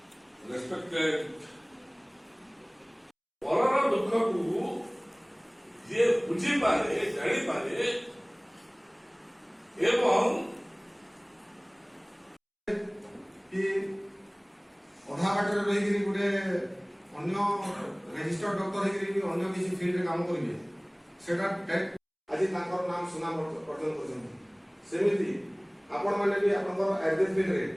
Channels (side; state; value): both; identical; correlation 1.00